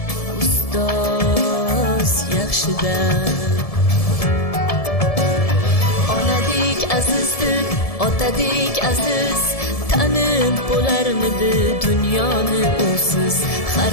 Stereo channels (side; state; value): right; late; 1.7 ms